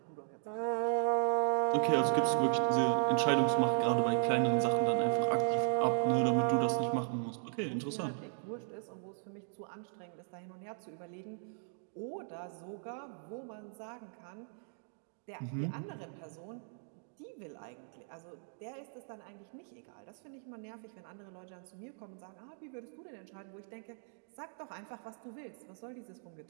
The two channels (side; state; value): left; silent; digital silence